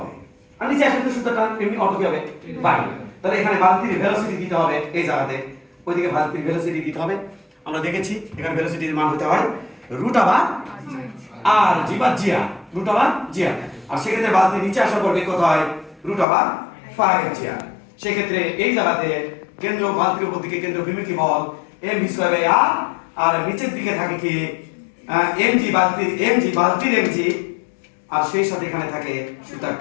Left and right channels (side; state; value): right; drops out; at 16.2 s